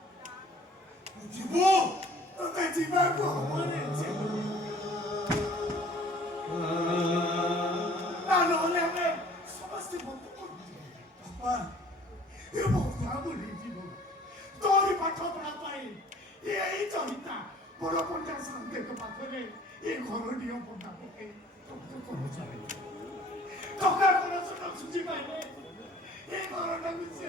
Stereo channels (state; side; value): normal; both; correlation 0.53